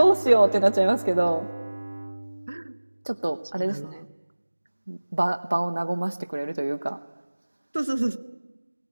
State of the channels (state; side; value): inverted; both; correlation -1.00